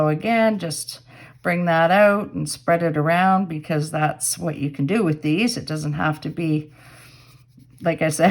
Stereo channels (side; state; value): both; identical; correlation 1.00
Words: again, just bring that out and spread it around, because that's what you can do with these. It doesn't have to be, like I